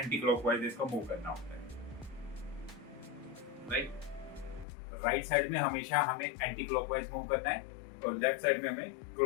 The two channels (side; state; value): right; drops out; at 4.7 s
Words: क्लॉकवाइज इसको मूव करना होता है। राइट साइड में हमेशा हमें एंटी क्लॉकवाइज मूव करना है और लेफ्ट साइड में हमें